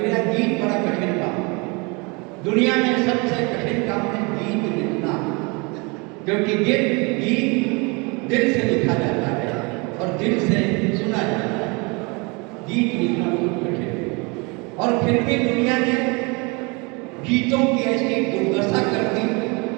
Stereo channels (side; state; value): left; quieter; 29.0 dB